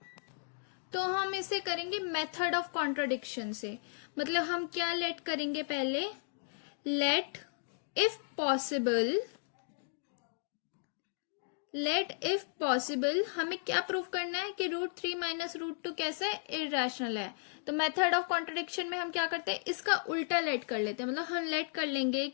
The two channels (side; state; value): right; silent; digital silence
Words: तो हम इसे करेंगे मेथड ऑफ कॉन्ट्राडिक्शन से, मतलब हम क्या लेट करेंगे, पहले लेट इफ पॉसिबल हमें क्या प्रूफ करना है कि √3 माइनस √2 कैसा है, इरैशनल है। तो मेथड ऑफ कॉन्ट्राडिक्शन में हम क्या करते हैं, इसका उल्टा लेट कर लेते हैं, मतलब हम लेट कर लेंगे